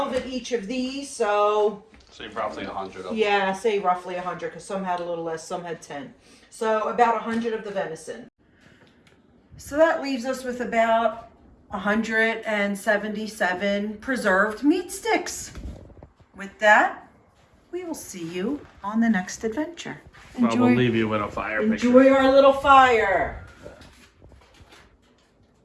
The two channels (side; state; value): both; identical; correlation 1.00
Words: in each of these, so... So roughly 100 of them. Yeah, say roughly 100, because some had a little less, some had 10. So about 100 of the venison. So that leaves us with about 177 preserved meat sticks. With that, we will see you on the next adventure. Well, we'll leave you with a fire picture. Enjoy our little fire.